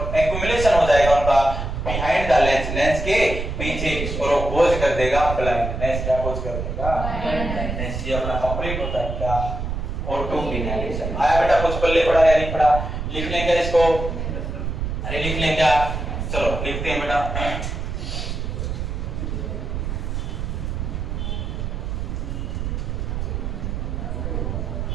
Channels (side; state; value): right; noise; rumble, 4 dB below the sound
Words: एक्यूमुलेशन हो जाएगा उनका बिहाइंड द लेंस, लेंस के पीछे, और वो खोज कर देगा ब्लाइंडनेस। क्या खोज कर देगा? ब्लाइंडनेस। ये अपना कंप्लीट होता है क्या? Auto inhalation. आया बेटा? कुछ पल्ले पड़ा या नहीं पड़ा? लिख लेंगे इसको? अरे लिख लेंगे क्या? चलो लिखते हैं बेटा।